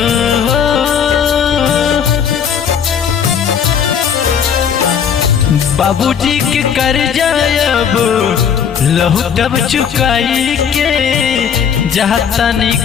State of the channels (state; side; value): quieter; right; 7.7 dB